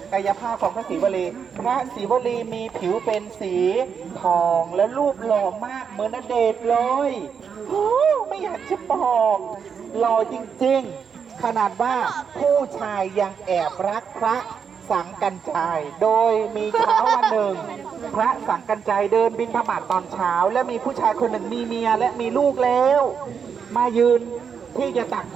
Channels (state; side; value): quieter; left; 6.8 dB